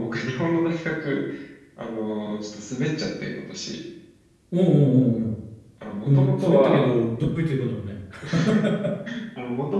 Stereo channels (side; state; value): both; identical; correlation 1.00